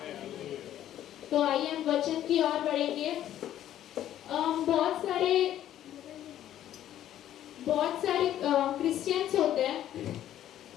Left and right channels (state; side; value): quieter; right; 11.8 dB